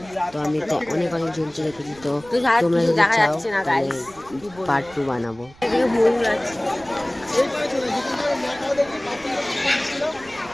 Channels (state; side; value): noise; right; rumble, 23 dB below the sound